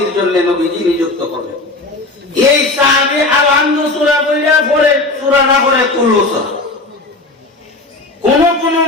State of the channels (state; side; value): quieter; right; 3.1 dB